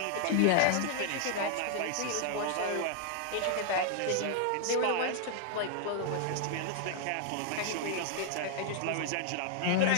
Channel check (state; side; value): different; both; correlation 0.00